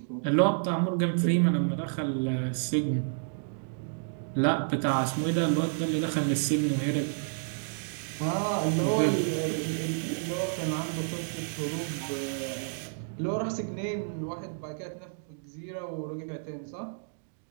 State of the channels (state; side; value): silent; left; digital silence